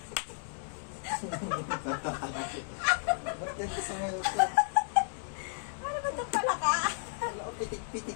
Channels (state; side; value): silent; right; digital silence